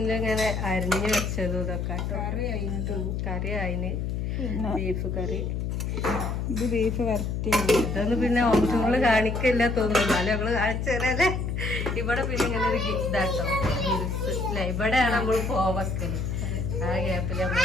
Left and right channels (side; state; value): left; noise; hum, 2 dB below the sound